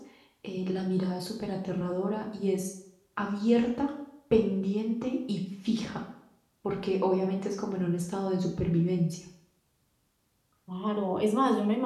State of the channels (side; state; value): both; identical; correlation 1.00